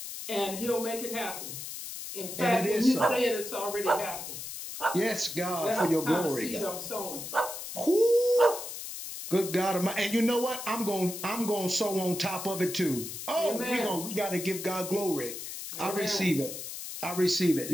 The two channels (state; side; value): noise; left; hiss, 8 dB below the sound